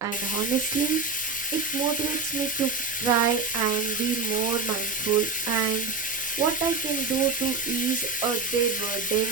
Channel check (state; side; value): quieter; left; 4.2 dB